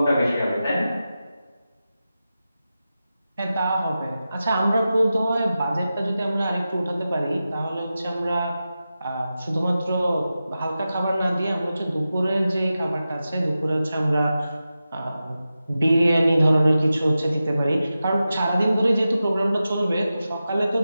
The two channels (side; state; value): both; inverted; correlation -0.93